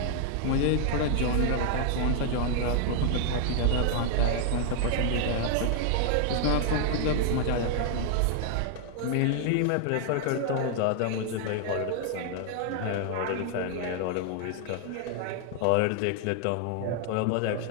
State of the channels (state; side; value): different; both; correlation 0.00